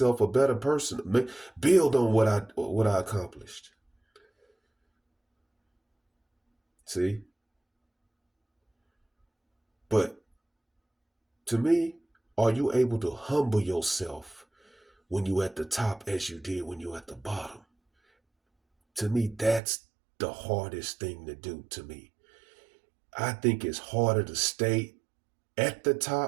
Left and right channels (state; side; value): drops out; left; at 19.6 s